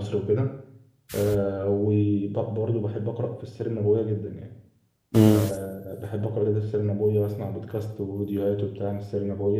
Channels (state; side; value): identical; both; correlation 1.00